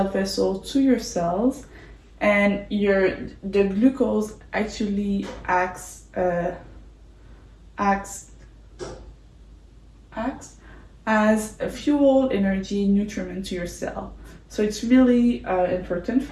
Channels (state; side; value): identical; both; correlation 1.00